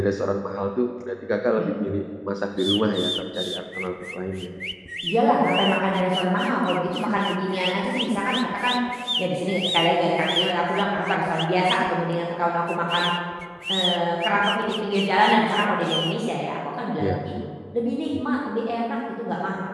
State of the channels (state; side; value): identical; both; correlation 1.00